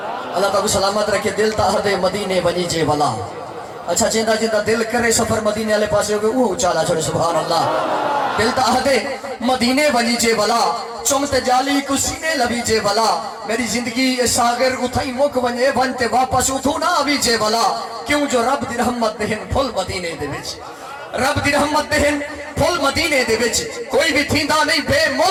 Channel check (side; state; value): both; identical; correlation 1.00